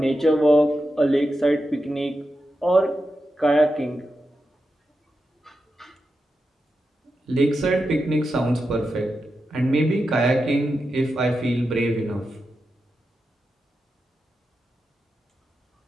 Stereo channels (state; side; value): normal; both; correlation 0.89